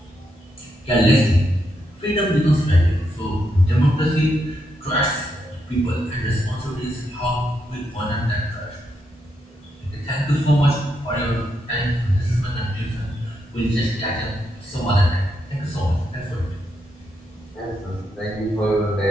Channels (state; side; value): normal; both; correlation 0.81